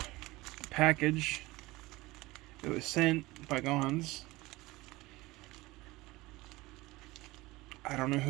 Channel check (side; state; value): left; quieter; 20.3 dB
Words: package. It was sent by Gons. I don't know